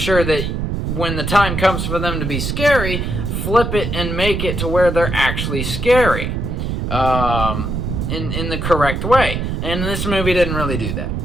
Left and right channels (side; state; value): right; noise; rumble, 2 dB below the sound